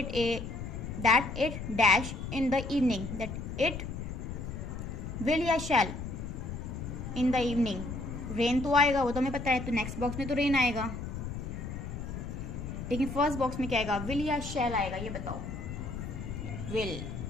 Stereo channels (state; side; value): noise; left; rumble, 6 dB below the sound